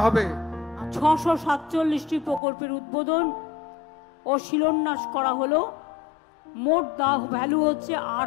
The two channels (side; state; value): right; drops out; at 2.4 s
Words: হবে। 647টি প্রকল্পের উদ্বোধন ও শিলান্যাস করা হলো। মোট ভ্যালু হচ্ছে